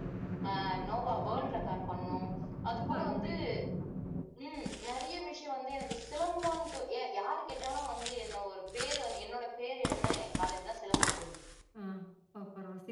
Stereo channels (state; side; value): identical; both; correlation 1.00